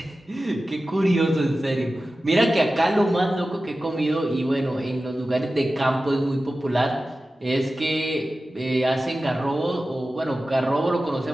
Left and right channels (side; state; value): both; normal; correlation 0.95